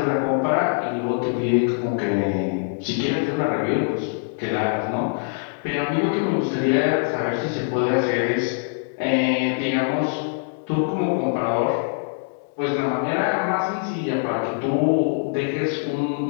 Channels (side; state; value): right; silent; digital silence